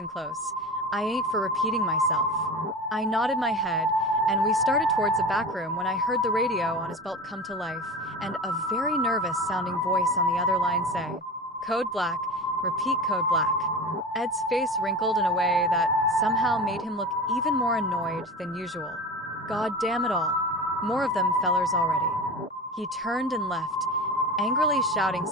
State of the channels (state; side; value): normal; both; correlation 0.31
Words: close. I ain't for repeating myself." I nodded my head, and we started towards the back room when I heard the radio on his belt come to life, and a very nervous-sounding voice on the other line say, "Code black, repeat code black." Ed's face wrinkled in a way that somehow made him look even more annoyed than usual. God damn it all. More of them fellers already. He turned and left, angrily shouting